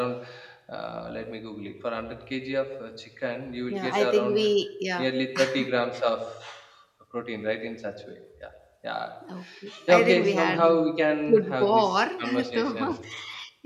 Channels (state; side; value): identical; both; correlation 1.00